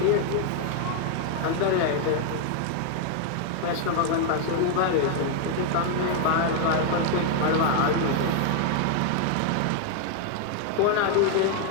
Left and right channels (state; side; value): different; both; correlation 0.00